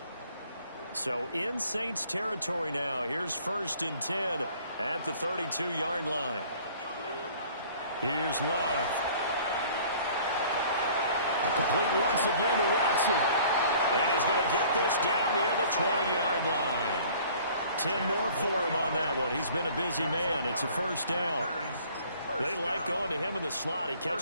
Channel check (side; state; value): both; inverted; correlation -0.52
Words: So in Saints territory now. Here's 1st and 10 at the 32-yard line. Here's Love. Complete once again to Watson. And he's going to get this down near the 20-yard line. 10 more for him on that one. He's been a busy man. It's a 1st down. They like going to him in the slot. He